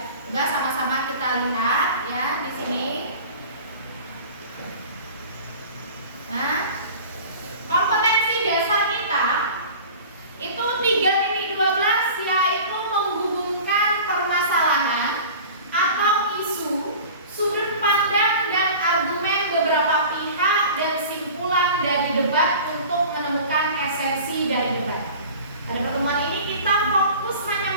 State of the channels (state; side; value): inverted; both; correlation -0.40